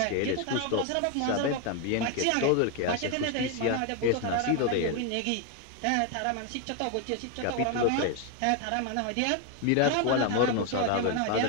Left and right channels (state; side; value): different; both; correlation 0.01